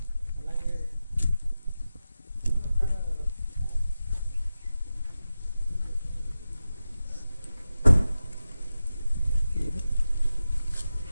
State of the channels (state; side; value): inverted; both; correlation -0.93